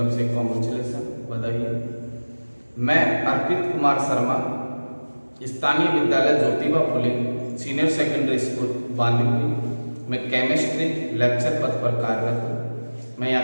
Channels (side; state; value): both; inverted; correlation -1.00